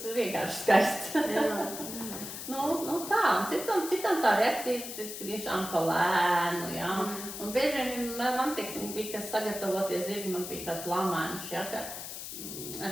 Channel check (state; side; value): noise; left; hiss, 8 dB below the sound